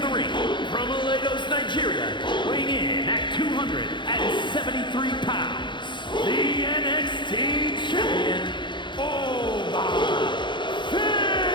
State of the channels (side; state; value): right; late; 0.23 ms